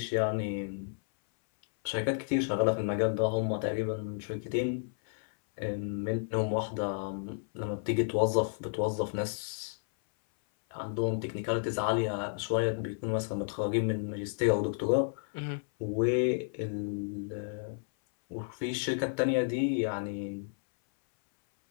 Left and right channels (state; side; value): silent; right; 57 dB below the other